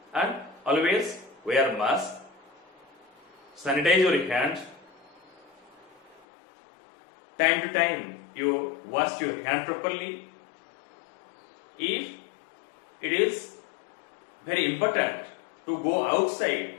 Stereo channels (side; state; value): right; drops out; at 6.2 s